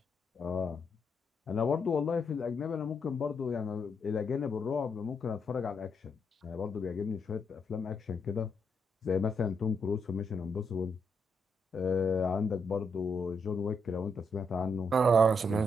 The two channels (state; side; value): normal; both; correlation 0.78